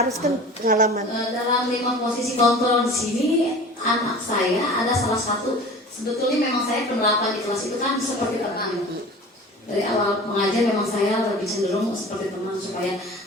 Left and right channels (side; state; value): both; normal; correlation 0.40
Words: kan pengalaman. Dalam 5 posisi kontrol di sini, anak saya ada salah satu, sebetulnya memang saya penerapan di kelas itu kan seperti teman. Dari awal mengajar memang saya lebih cenderung seperti teman supaya